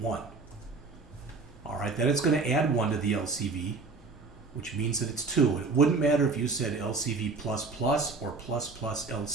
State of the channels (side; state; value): left; quieter; 4.1 dB